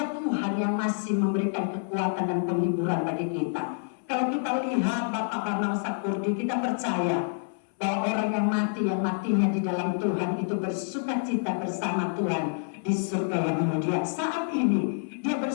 Tuhan yang masih memberikan kekuatan dan penghiburan bagi kita. Kalau kita lihat Bapak Bambang Sakurdi, kita percaya bahwa orang yang matinya di dalam Tuhan itu bersukacita bersama Tuhan di surga yang mulia. Saat ini dia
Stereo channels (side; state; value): right; silent; 60 dB below the other